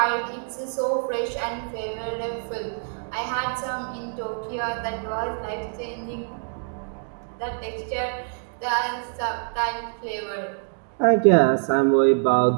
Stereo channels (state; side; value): silent; left; digital silence